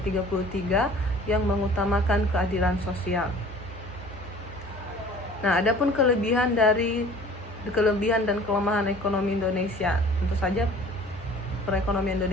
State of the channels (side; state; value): both; normal; correlation 0.47